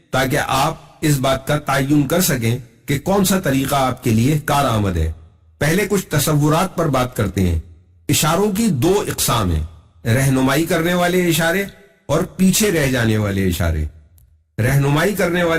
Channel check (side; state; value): both; identical; correlation 1.00